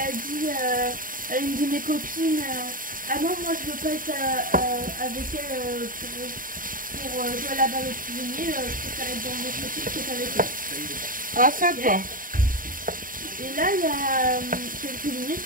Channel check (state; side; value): late; left; 0.40 ms